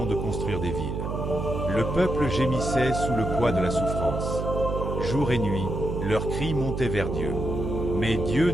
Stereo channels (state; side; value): noise; right; hum, 3 dB below the sound